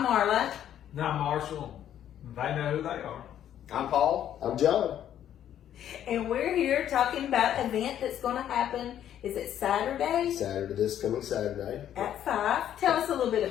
Marla. Now Marshall, they know who they are. I'm Paul. I'm John. And we're here talking about an event that's going to happen. Is it Saturday? This coming Saturday. At 5. Tell us a little bit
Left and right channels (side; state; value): right; quieter; 10.7 dB